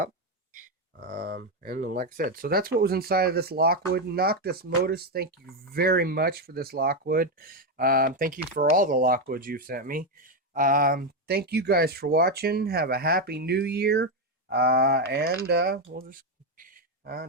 And then, like I said, so that's what was inside of this Lockwood. Noctis Motus, thank you very much for this Lockwood. Thank you for all the Lockwoods you've sent me. Thank you guys for watching. Have a happy new year. And we'll just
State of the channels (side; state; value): both; normal; correlation 0.06